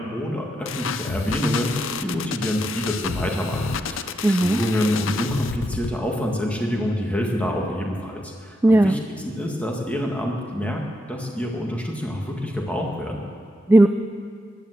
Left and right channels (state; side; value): normal; both; correlation 0.83